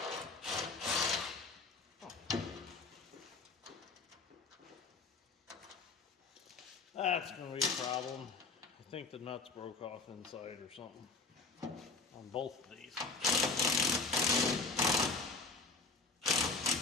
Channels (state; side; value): quieter; right; 4.1 dB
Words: That's going to be a problem. I think the nuts broke off inside or something on both of these.